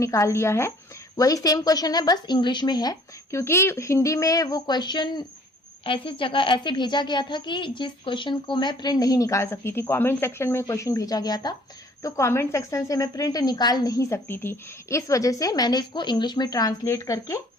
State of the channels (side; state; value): both; normal; correlation 0.55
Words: निकाल लिया है। वही सेम क्वेश्चन है, बस इंग्लिश में है, क्योंकि हिंदी में वो क्वेश्चन ऐसी जगह ऐसे भेजा गया था कि जिस क्वेश्चन को मैं प्रिंट नहीं निकाल सकती थी। कमेंट सेक्शन में क्वेश्चन भेजा गया था, तो कमेंट सेक्शन से मैं प्रिंट निकाल नहीं सकती थी। इस वजह से मैंने इसको इंग्लिश में ट्रांसलेट करके